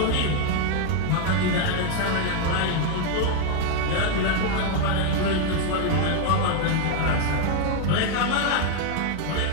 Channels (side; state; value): both; different; correlation 0.00